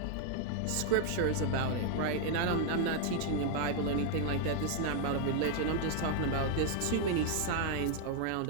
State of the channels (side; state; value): both; different; correlation 0.00